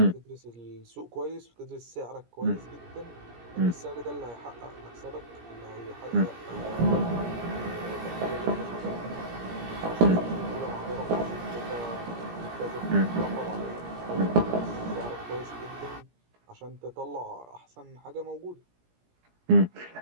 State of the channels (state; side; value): late; left; 17 ms